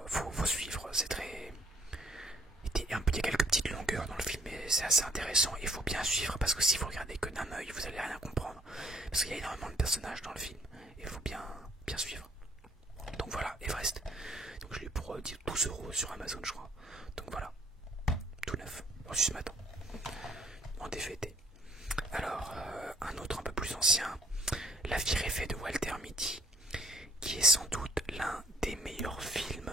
faut suivre, c'est très... Il y a quelques petites longueurs dans le film, mais c'est assez intéressant. Il faut bien suivre parce que si vous regardez que d'un œil, vous allez rien comprendre. Parce qu'il y a énormément de personnages dans le film. Et il faut bien suivre. Donc voilà, Everest. Donc je l'ai eu pour 12 € sur Amazon, je crois. Donc voilà, tout neuf, reçu ce matin, en DVD. Alors, un autre un peu plus ancien, La vie rêvée de Walter Mitty, qui est sans doute l'un des meilleurs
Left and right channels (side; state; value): both; normal; correlation 0.63